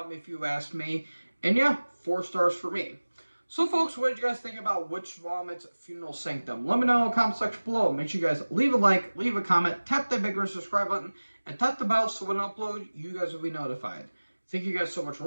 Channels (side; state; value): both; inverted; correlation -1.00